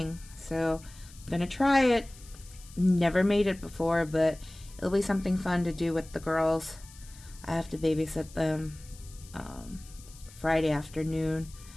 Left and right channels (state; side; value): noise; left; hiss, 21 dB below the sound